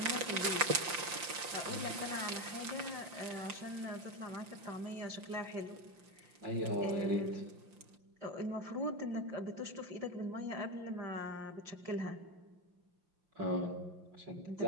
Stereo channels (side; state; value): left; late; 5.8 ms